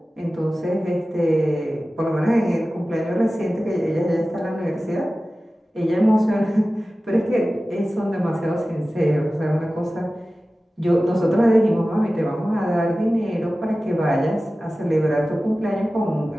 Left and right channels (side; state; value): both; normal; correlation 0.96